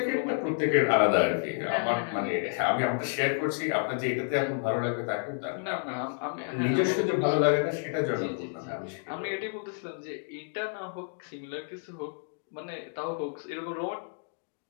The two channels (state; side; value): silent; right; 58 dB below the other